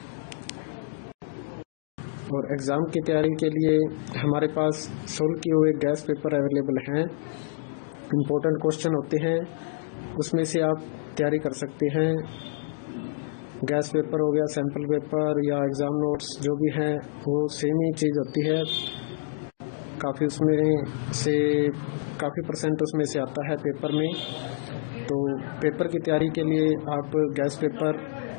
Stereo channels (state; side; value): silent; right; digital silence